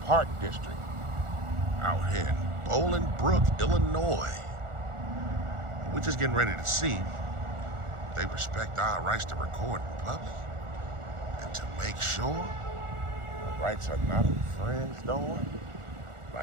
District out here in Boilingbrook, Illinois. We're just getting ready to see if they respect our rights to record in public and to make sure our rights are not infringed on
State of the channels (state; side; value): late; left; 1.4 ms